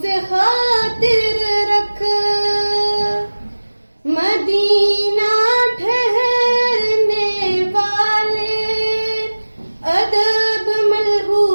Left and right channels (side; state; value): both; inverted; correlation -1.00